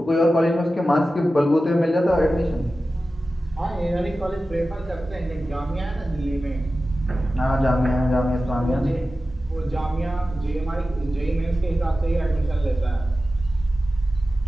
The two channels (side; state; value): both; normal; correlation 0.94